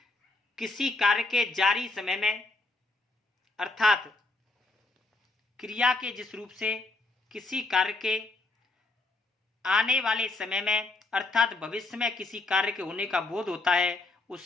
किसी कार्य के जारी समय में अर्थात क्रिया के जिस रूप से किसी कार्य के आने वाले समय में अर्थात भविष्य में किसी कार्य के होने का बोध होता है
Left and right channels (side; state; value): right; quieter; 3.2 dB